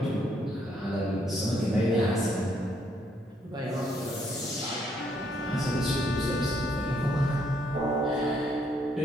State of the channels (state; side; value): normal; both; correlation 0.71